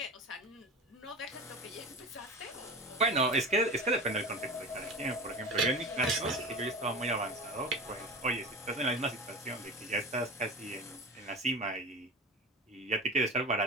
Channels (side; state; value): both; normal; correlation 0.31